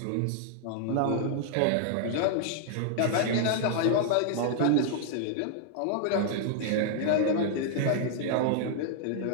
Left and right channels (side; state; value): both; different; correlation -0.01